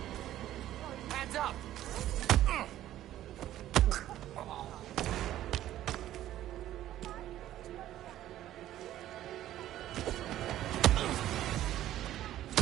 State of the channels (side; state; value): left; quieter; 13.2 dB